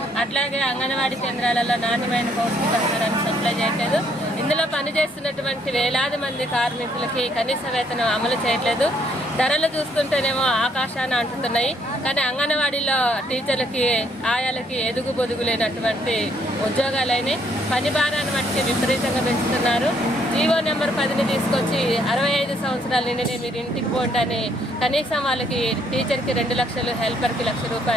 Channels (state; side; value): normal; both; correlation 0.68